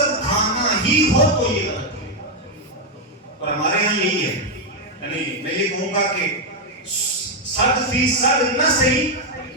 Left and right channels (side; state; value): both; normal; correlation 0.02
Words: کھانا ہی ہو تو یہ غلط ہے، اور ہمارے ہاں یہی ہے، یعنی میں یہ کہوں گا کہ 100% نہ صحیح